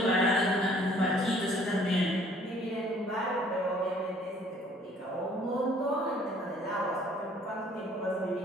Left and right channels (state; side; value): normal; both; correlation 0.57